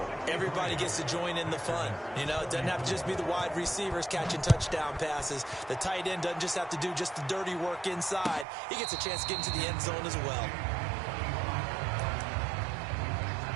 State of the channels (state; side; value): drops out; left; at 8.5 s